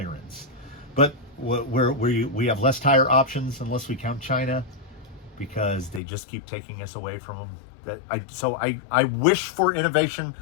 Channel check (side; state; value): right; drops out; at 6.0 s